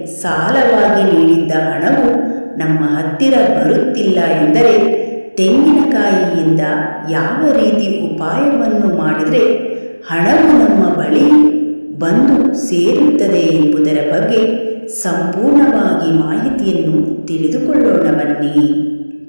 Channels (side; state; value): both; inverted; correlation -1.00